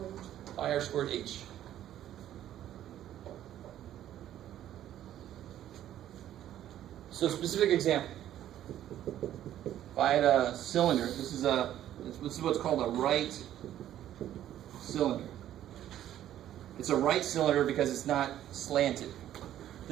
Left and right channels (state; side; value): quieter; left; 11.9 dB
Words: Pi r squared h. So specific example. If I had a cylinder, this is what's called a right cylinder. It's a right cylinder because it's not slanted.